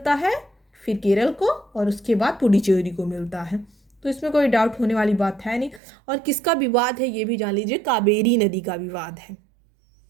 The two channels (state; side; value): drops out; left; at 5.8 s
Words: है, फिर केरल को, और उसके बाद पुडुचेरी को मिलता है। तो इसमें कोई डाउट होने वाली बात है नहीं। और किसका विवाद है ये भी जान लीजिए, कावेरी नदी का विवाद है।